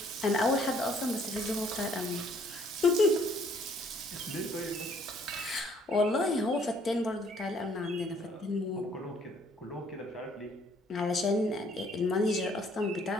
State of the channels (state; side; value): normal; both; correlation 0.62